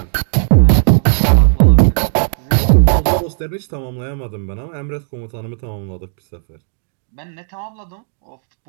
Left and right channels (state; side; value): silent; left; digital silence